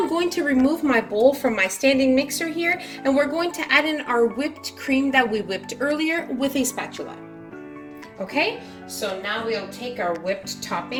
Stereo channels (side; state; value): both; identical; correlation 1.00